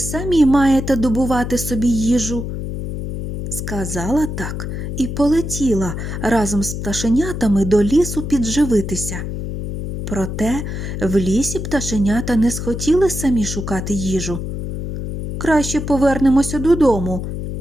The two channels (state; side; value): noise; left; hum, 5 dB below the sound